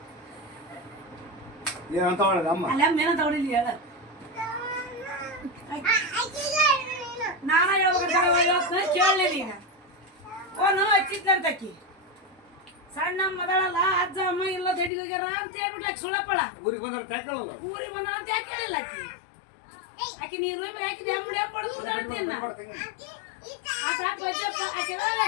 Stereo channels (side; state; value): right; drops out; at 14.9 s